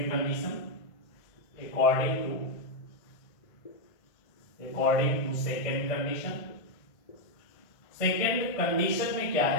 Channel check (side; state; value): right; late; 1.5 ms